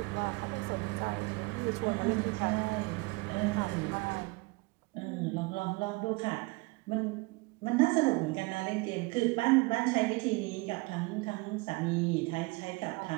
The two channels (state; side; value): quieter; left; 25.9 dB